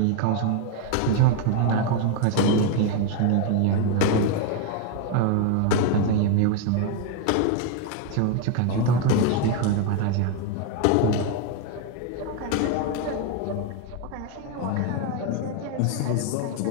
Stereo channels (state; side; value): different; both; correlation 0.01